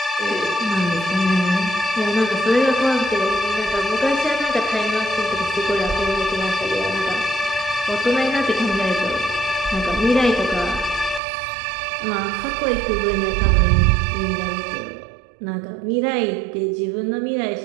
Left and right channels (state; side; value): drops out; left; at 11.2 s